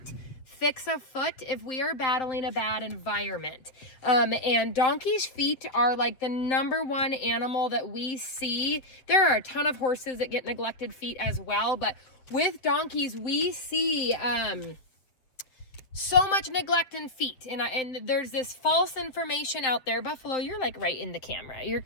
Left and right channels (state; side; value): late; right; 7.7 ms